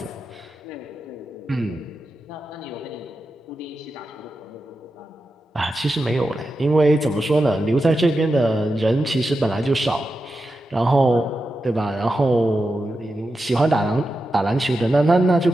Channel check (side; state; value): both; normal; correlation 0.90